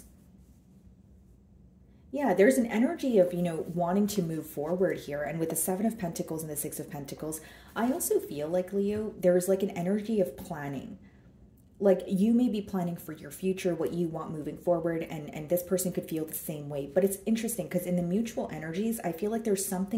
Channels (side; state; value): both; identical; correlation 1.00